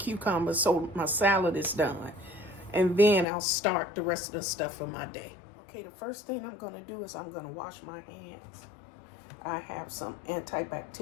so my salad is done. And then I'll start the rest of the stuff for my day. Okay, the first thing I'm gonna do is I'm gonna wash my hands. I have some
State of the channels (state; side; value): drops out; right; at 3.2 s